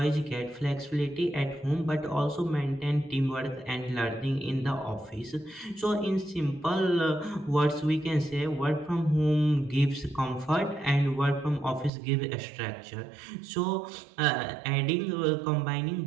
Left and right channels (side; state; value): left; drops out; at 11.9 s